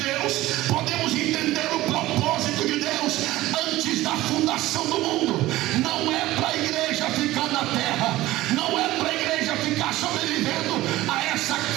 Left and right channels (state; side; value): quieter; left; 16.9 dB